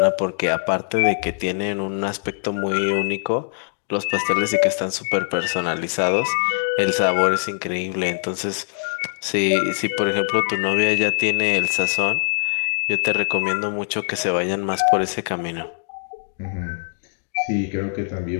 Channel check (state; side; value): silent; right; digital silence